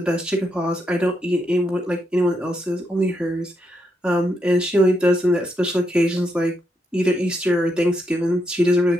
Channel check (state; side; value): normal; both; correlation 0.80